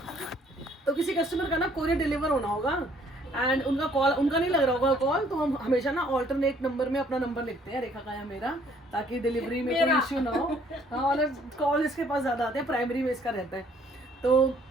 तो किसी कस्टमर का ना कोरियर डिलीवर होना होगा, एंड उनका कॉल, उनका नहीं लग रहा होगा कॉल, तो हम हमेशा ना ऑल्टरनेट नंबर में अपना नंबर लिखते हैं, रेखा का या मेरा, ताकि डिलीवरी में कोई इश्यू ना हो। हाँ, और कॉल इसके पास ज़्यादा आते हैं, प्राइमरी में इसका रहता है। तो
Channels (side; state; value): both; normal; correlation 0.62